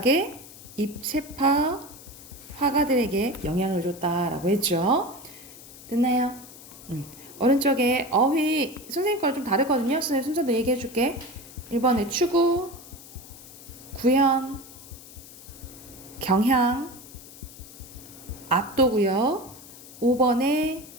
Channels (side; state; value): left; noise; hiss, 18 dB below the sound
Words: 입체파 화가들에게 영향을 줬다라고 했죠. 됐나요? 오른쪽에 어휘 선생님 거랑 좀 다르거든요. 선생님 순서도 얘기해 줄게. 1번에 추구, 구현, 경향, 압도고요. 5번에